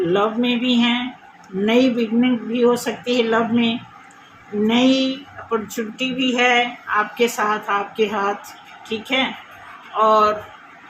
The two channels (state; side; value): identical; both; correlation 1.00